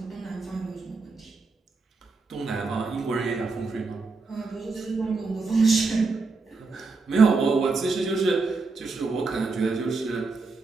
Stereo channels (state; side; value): quieter; left; 4.0 dB